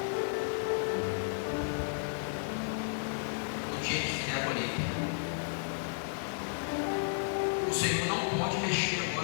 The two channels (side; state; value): right; silent; digital silence